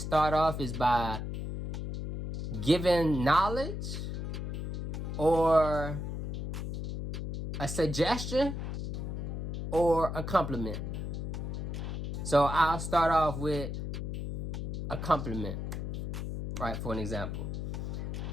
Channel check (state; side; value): noise; left; hum, 4 dB below the sound